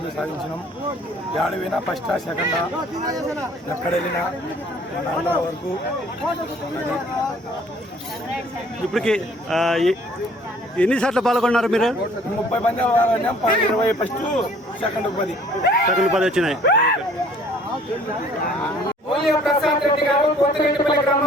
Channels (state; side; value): normal; both; correlation 0.56